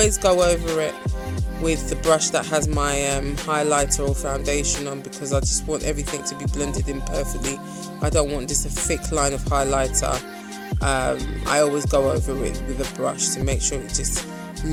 go over it with the brush that has my highlighter or foundation on, because I just want everything to be blended in perfectly. I don't want just a thick line of highlighter. I always go over it with a brush to make sure it just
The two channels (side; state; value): both; identical; correlation 1.00